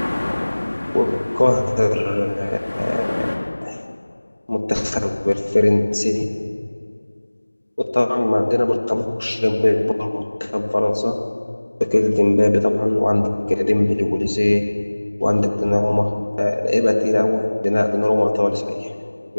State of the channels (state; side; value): inverted; both; correlation -1.00